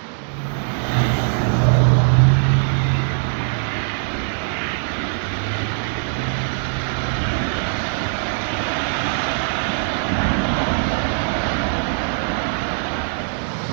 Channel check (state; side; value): silent; left; 55 dB below the other